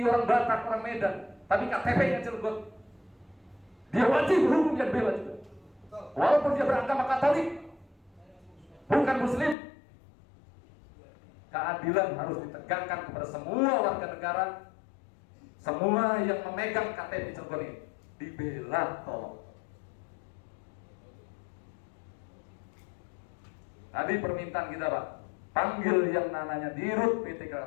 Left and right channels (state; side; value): drops out; right; at 9.6 s